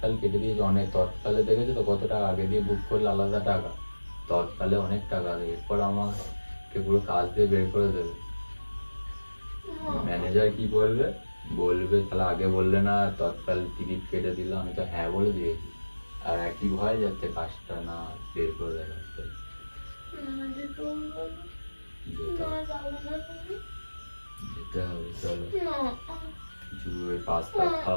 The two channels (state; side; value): inverted; both; correlation -1.00